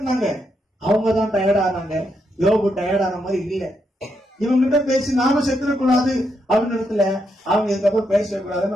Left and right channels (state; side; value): normal; both; correlation 0.80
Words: அவங்க தான் டயர்ட் ஆனாங்க. யோபு டயர்ட் ஆன மாதிரி இல்ல. இவங்க கிட்ட பேசி நாம செத்துடக்கூடாது அப்படின்னு இடத்துல அவங்க இதுக்கப்புறம் பேசக்கூடாது,